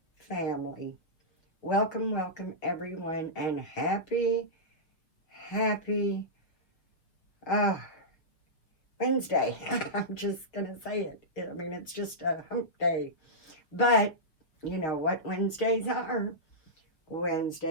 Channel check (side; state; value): right; late; 5.9 ms